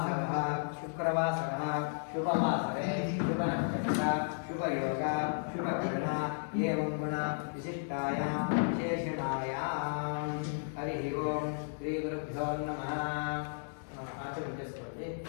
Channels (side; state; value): right; silent; digital silence